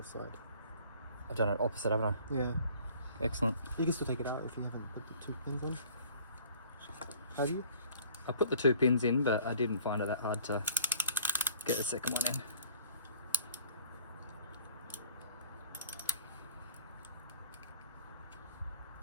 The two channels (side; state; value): both; inverted; correlation -0.53